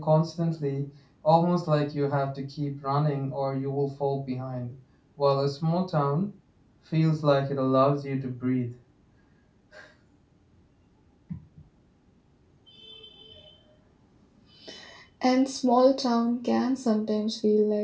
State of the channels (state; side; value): identical; both; correlation 1.00